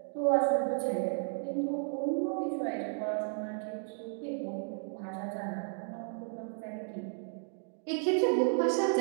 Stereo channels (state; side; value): silent; left; 56 dB below the other